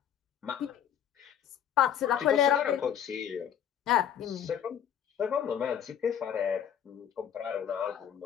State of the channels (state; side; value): quieter; right; 9.3 dB